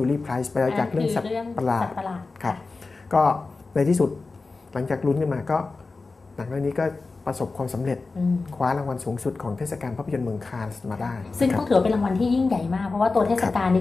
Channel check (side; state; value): right; quieter; 3.8 dB